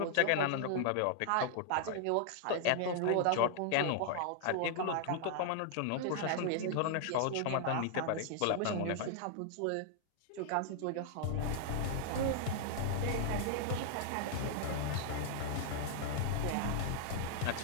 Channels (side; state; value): both; different; correlation -0.01